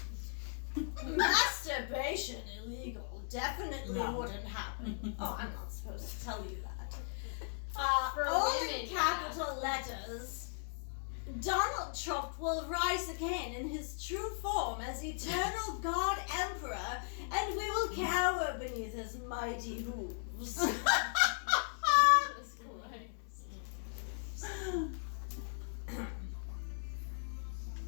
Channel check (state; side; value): silent; right; digital silence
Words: Masturbation illegal. Definitely No. wouldn't happen. Oh, I'm not supposed to tell you that. For All women, in capital letters. Donald Trump will rise again in his true form as eternal God Emperor, and we will cower beneath his mighty hooves. Jesus Christ.